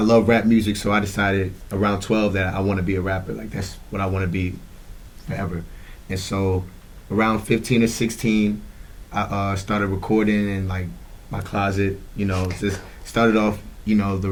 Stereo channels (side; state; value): both; identical; correlation 1.00